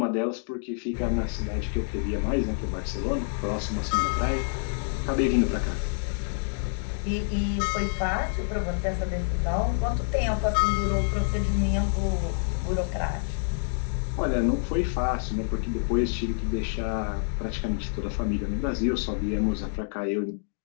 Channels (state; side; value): silent; right; digital silence